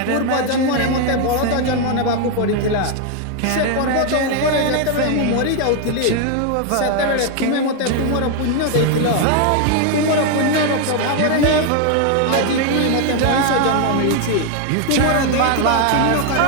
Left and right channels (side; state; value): both; different; correlation 0.00